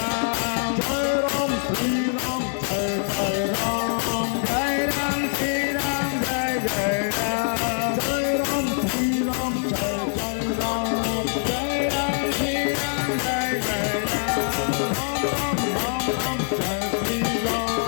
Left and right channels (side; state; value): right; silent; 60 dB below the other